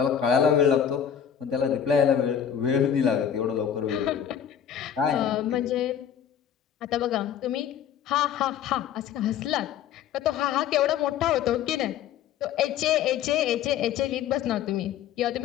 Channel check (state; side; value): quieter; right; 8.9 dB